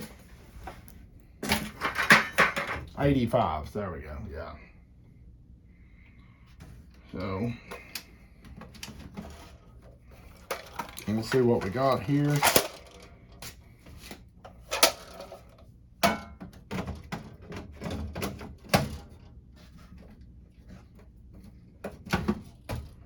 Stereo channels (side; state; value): both; identical; correlation 1.00